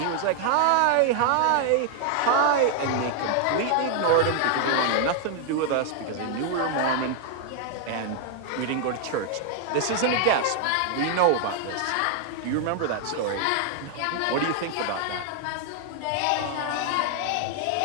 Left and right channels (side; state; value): both; different; correlation 0.00